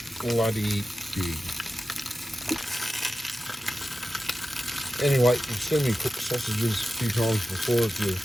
bloody big. Anyway, you've seen me cook sausages a few times before if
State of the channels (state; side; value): normal; both; correlation 0.93